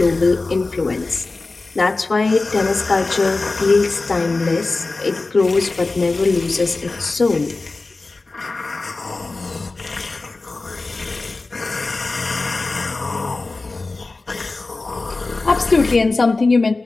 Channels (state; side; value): quieter; right; 3.5 dB